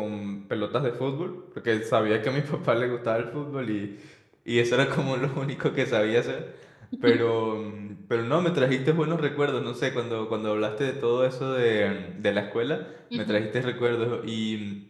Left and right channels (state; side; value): identical; both; correlation 1.00